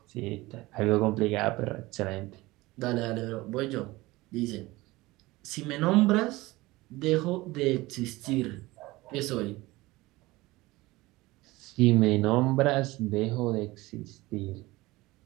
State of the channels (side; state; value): left; quieter; 20.2 dB